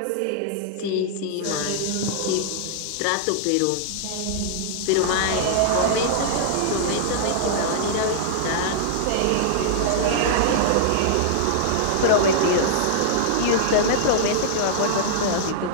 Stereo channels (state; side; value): different; both; correlation -0.01